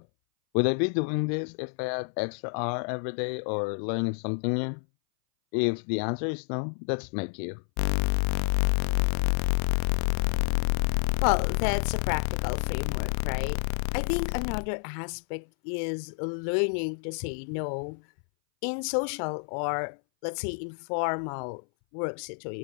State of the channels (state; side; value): silent; right; 59 dB below the other